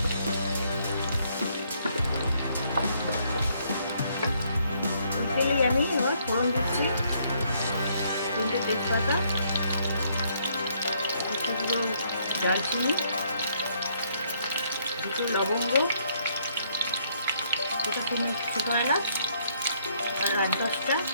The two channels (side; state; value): both; inverted; correlation -0.69